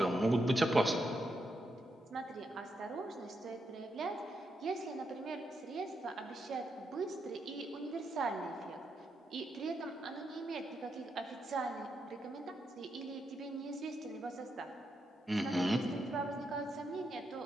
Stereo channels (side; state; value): both; normal; correlation 0.82